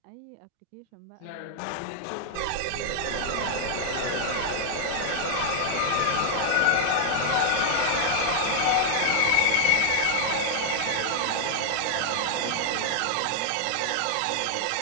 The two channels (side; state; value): both; different; correlation 0.00